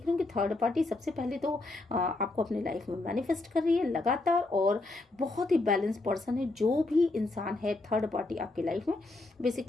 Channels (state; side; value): quieter; right; 3.0 dB